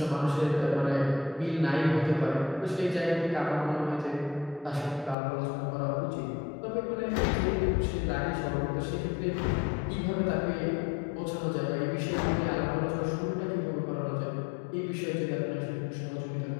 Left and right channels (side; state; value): right; drops out; at 5.2 s